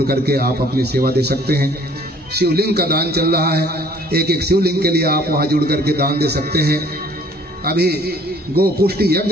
करके आप अपनी सेवा दे सकते हैं। शिवलिंग का दान चल रहा है, एक एक शिवलिंग के लिए आप वहाँ जुड़ करके दान दे सकते हैं। अभी गो पुष्टि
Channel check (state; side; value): normal; both; correlation 0.56